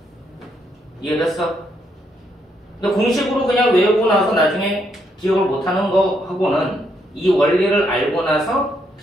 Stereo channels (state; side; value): normal; both; correlation 0.75